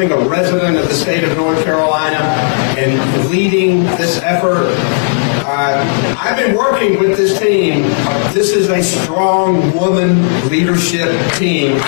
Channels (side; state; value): right; silent; digital silence